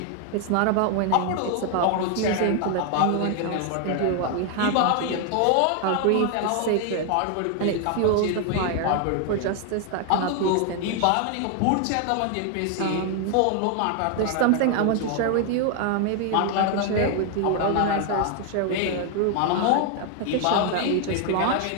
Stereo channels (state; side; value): different; both; correlation 0.00